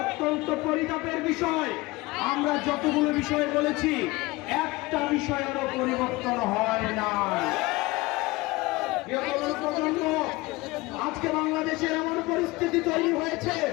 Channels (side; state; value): right; quieter; 21.7 dB